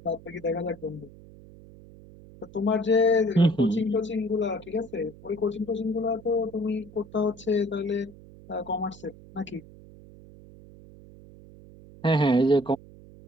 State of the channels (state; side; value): noise; right; hum, 20 dB below the sound